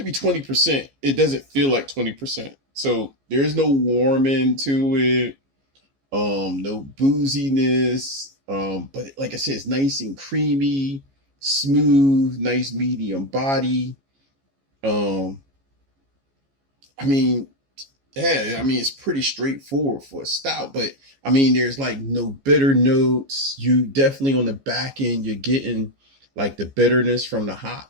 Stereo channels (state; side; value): late; left; 15 ms